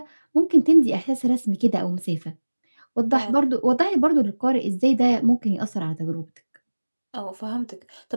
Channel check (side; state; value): both; inverted; correlation -1.00